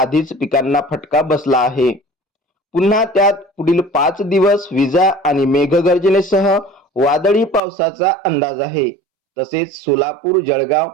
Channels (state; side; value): drops out; left; at 7.6 s